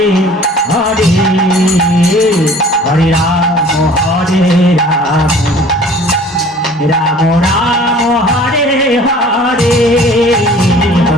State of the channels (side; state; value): both; normal; correlation 0.49